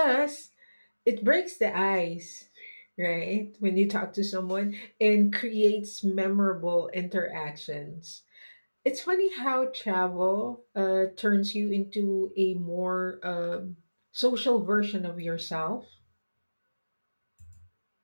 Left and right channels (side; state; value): both; inverted; correlation -1.00